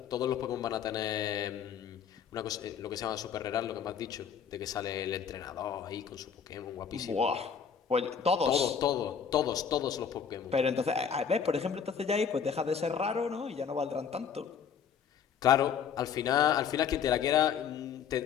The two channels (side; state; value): right; quieter; 7.4 dB